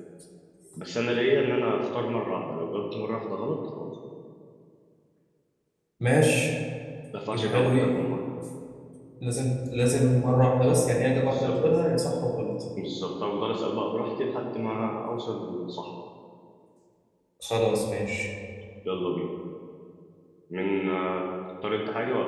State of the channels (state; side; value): identical; both; correlation 1.00